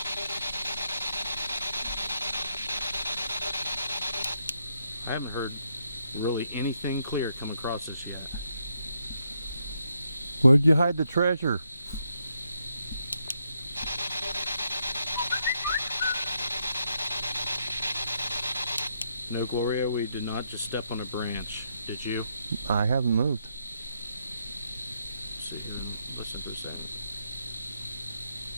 I haven't heard really anything clear come across this yet. Where'd you hide the treasure? No, Gloria, we did not just step on a branch. Did you? I haven't moved. Sit here and listen for a second.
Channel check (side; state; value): both; inverted; correlation -0.78